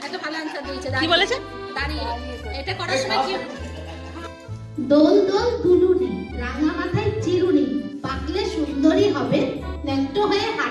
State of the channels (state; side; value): identical; both; correlation 1.00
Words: একটা ভালো আনসার দিয়েছে। কি বলেছে? দাঁড়িয়ে। এটা করার সময় কি? দোল দোল দুলুনি, রাঙা মাথায় চিরুনি, পাকলে সুন্দরী হবে, ন্যাংটো হয়ে